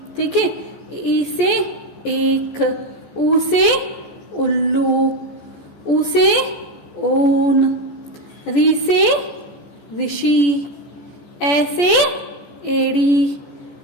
ठीक है, ई से एक, ऊ से उल्लू, ऊ से ऊन, री से ऋषि, ए से एड़ी,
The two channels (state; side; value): late; right; 14 ms